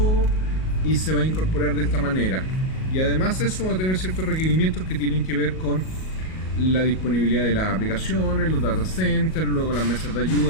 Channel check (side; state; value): right; late; 38 ms